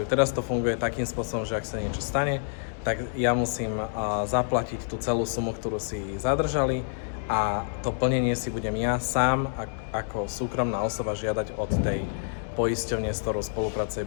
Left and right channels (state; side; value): silent; right; digital silence